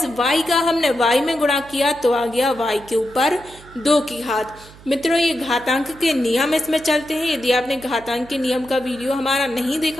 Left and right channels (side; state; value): right; noise; hum, 21 dB below the sound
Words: y का हमने y में गुणा किया तो आ गया y के ऊपर 2 की घात। मित्रों ये घातांक के नियम इसमें चलते हैं। यदि आपने घातांक के नियम का वीडियो हमारा नहीं